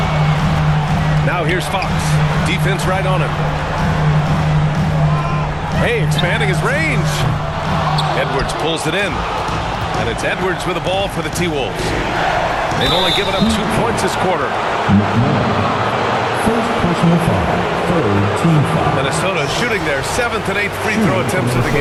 Now here's Fox. Defense right on him. Hey, expanding his range. Edwards pulls it in. And it's Edwards with the ball for the T-Wolves. They've only given up 2 points this quarter. McMillan. First personal foul. Third team foul. Minnesota shooting their 7th and 8th free throw attempts of the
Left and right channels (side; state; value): both; identical; correlation 1.00